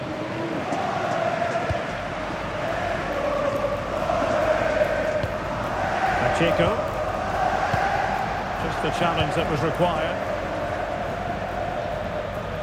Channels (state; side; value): identical; both; correlation 1.00